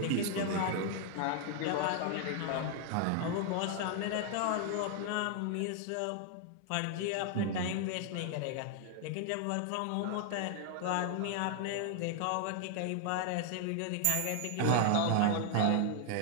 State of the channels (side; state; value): both; different; correlation 0.00